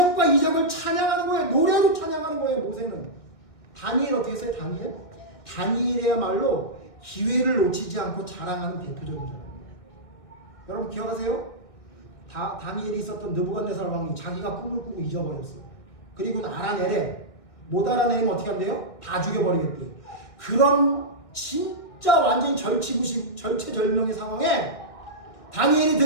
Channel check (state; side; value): late; right; 2.0 ms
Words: 이적을 찬양하는 거예요. 노래로 찬양하는 거예요. 모세는. 다니엘 어떻게 했어요? 다니엘이야말로 기회를 놓치지 않고 자랑하는 대표적인 사람이에요. 여러분 기억하세요? 다니엘이 있었던 느부갓네살 왕이 자기가 꿈을 꾸고 잊어버렸어. 그리고 알아내래. 못 알아내면 어떻게 한대요? 다 죽여버리겠대요. 그런 진짜 완전히 절체절명의 상황에 다니엘이